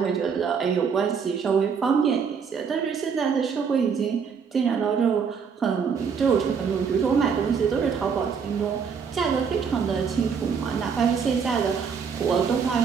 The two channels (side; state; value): left; quieter; 6.3 dB